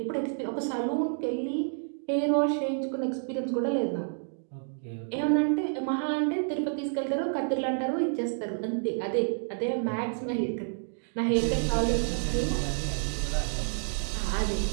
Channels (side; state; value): left; silent; digital silence